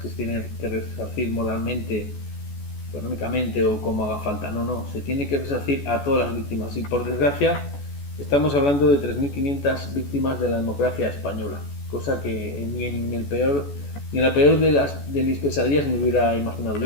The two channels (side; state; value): right; late; 14 ms